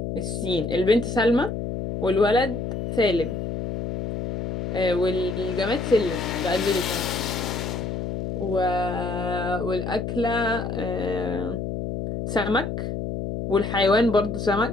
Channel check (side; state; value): left; noise; hum, 3 dB below the sound